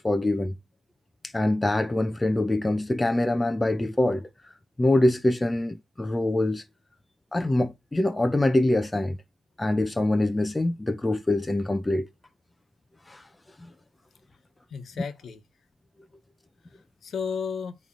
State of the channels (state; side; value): normal; both; correlation 0.96